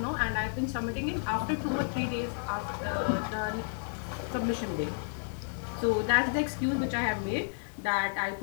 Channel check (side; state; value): right; silent; digital silence